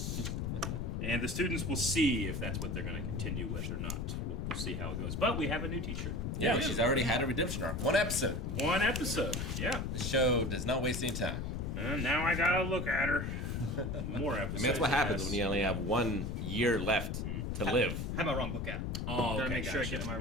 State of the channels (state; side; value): noise; left; rumble, 2 dB below the sound